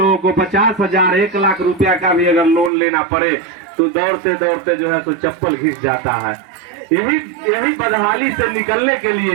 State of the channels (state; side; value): drops out; left; at 2.7 s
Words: को 50,000, 1 लाख रुपया का भी अगर लोन लेना पड़े तो दौड़ते दौड़ते जो है तो चप्पल घिस जाता है। यही बदहाली से निकलने के